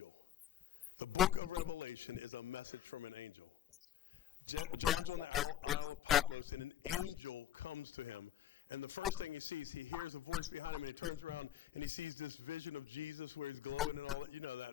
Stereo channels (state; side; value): quieter; right; 11.3 dB